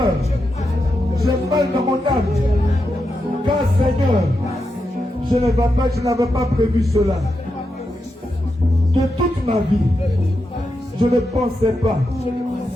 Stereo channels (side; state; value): both; normal; correlation 0.86